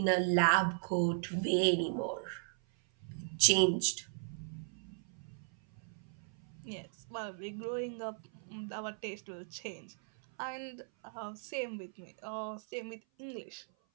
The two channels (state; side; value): silent; left; 53 dB below the other